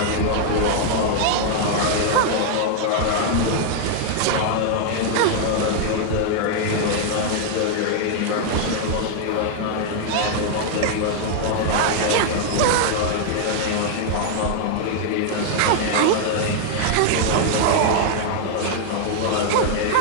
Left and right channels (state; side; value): different; both; correlation 0.00